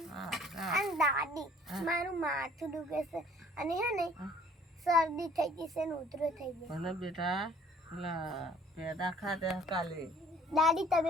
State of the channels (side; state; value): both; normal; correlation 0.55